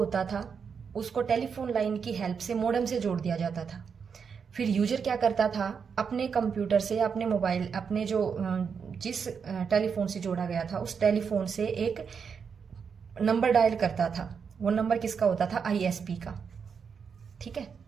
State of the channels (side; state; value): left; quieter; 6.3 dB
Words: था उसको टेलीफोन लाइन की हेल्प से मॉडेम से जोड़ दिया जाता था। फिर यूजर क्या करता था, अपने कंप्यूटर से, अपने मोबाइल, अपने जो जिस टेलीफोन से जोड़ा गया था उस टेलीफोन से एक नंबर डायल करता था। वो नंबर किसका होता था? ISP का। ठीक है।